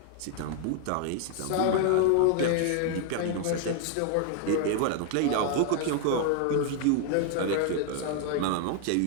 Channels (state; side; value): different; both; correlation 0.00